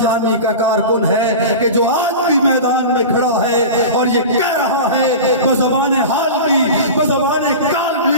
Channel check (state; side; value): inverted; both; correlation -0.30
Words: کا کارکن ہے کہ جو آج بھی میدان میں کھڑا ہے اور یہ کہہ رہا ہے بزبان حال بھی بزبان کال